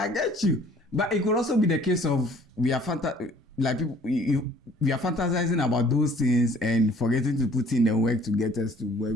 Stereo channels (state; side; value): normal; both; correlation 0.55